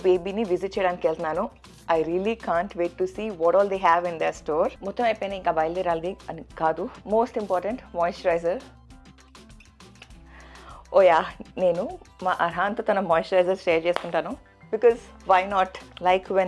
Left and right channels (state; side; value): identical; both; correlation 1.00